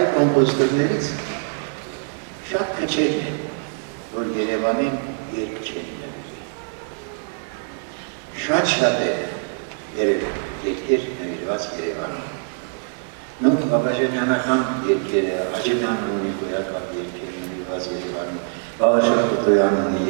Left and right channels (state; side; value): silent; left; 59 dB below the other